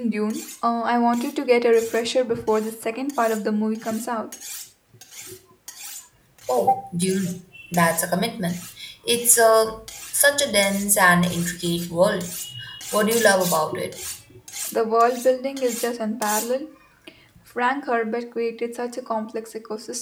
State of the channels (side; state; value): both; identical; correlation 1.00